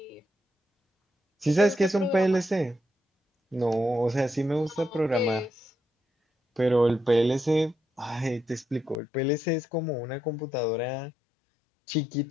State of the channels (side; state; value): right; drops out; at 9.0 s